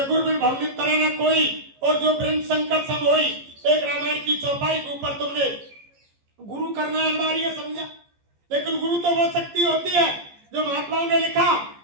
गुरु बिन भवनित तरह न कोई और जो ब्रह्म शंकर सब होई, एक रामायण की चौपाई के ऊपर तुमने गुरु करना अनिवार्य समझा। लेकिन गुरु तो वो शक्ति होती है जो महात्माओं ने लिखा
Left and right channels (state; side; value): late; left; 14 ms